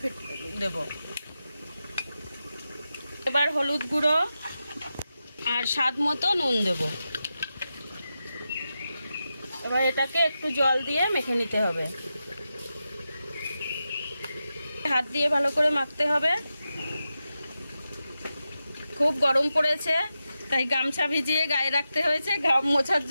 দেব। এবার হলুদ গুঁড়ো আর স্বাদ মতো নুন দেব। এবার এটাকে একটু জল দিয়ে মেখে নিতে হবে। হাত দিয়ে ভালো করে মাখতে হবে। খুব গরম পড়েছে, তাই গামছা ভিজিয়ে গায়ে রাখতে হয়েছে ঘাম মোছার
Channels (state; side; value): inverted; both; correlation -0.90